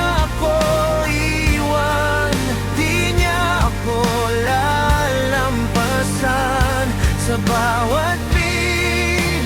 ako iwan, di niya ako lalampasan. Sa bawat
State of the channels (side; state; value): both; identical; correlation 1.00